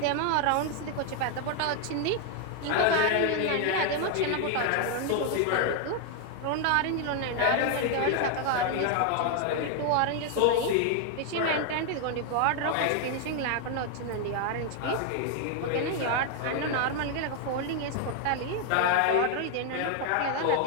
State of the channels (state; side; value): different; both; correlation 0.00